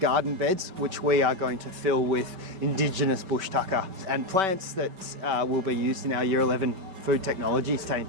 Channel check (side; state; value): left; late; 5.2 ms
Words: beds, which we are going to fill with Indigenous bush tucker and plants that will be used in our Year 11 food technologies